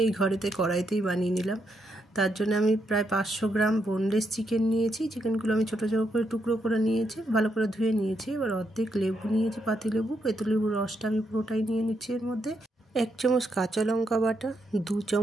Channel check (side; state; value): both; normal; correlation 0.79